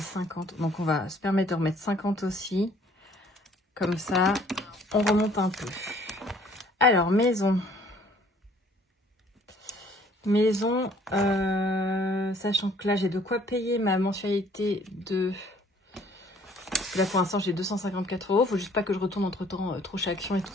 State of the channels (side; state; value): both; normal; correlation 0.58